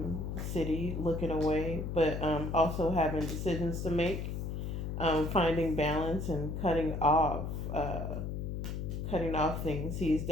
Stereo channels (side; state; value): left; noise; hum, 4 dB below the sound